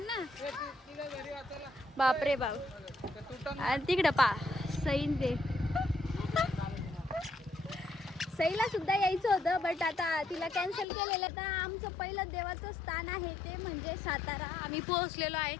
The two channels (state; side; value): drops out; right; at 10.9 s